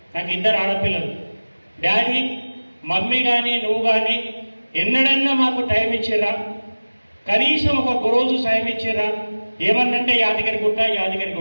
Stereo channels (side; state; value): both; inverted; correlation -1.00